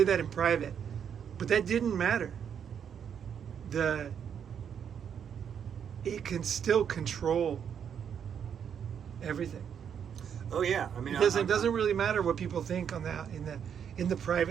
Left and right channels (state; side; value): quieter; left; 8.0 dB